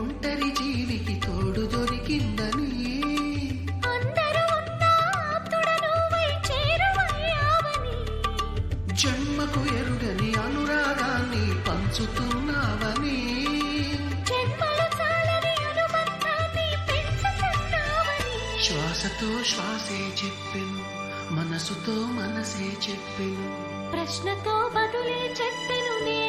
జీవికి తోడు దొరికిందని, జన్మకు ఎరుగని అనురాగాన్ని పంచుతున్నావని. శ్వాసతో శ్వాసే చెప్పెను, మనసుతో మనసే చెప్పెను, ప్రశ్నతో బదులే చెప్పెను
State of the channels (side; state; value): both; identical; correlation 1.00